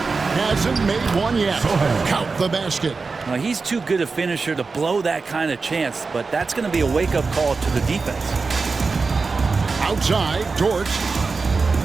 Hasn't made one yet. Count the basket. Now, he's too good a finisher to blow that kind of chance, but that's going to be a wake-up call to the defense. Outside, Dort.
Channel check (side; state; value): left; quieter; 4.3 dB